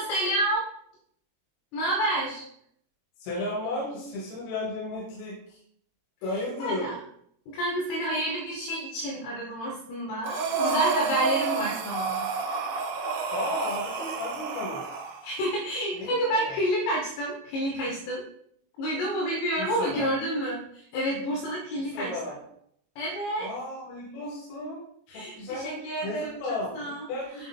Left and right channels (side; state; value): right; late; 22 ms